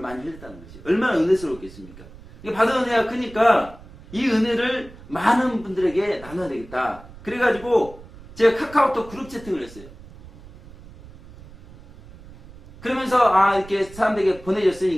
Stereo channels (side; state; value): right; noise; rumble, 19 dB below the sound